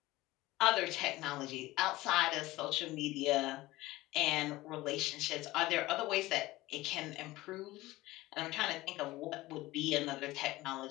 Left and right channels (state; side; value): quieter; right; 18.5 dB